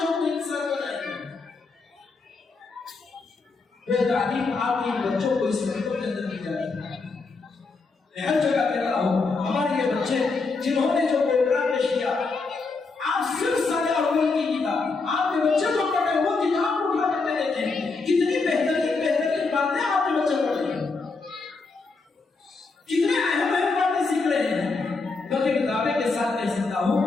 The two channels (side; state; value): right; quieter; 4.1 dB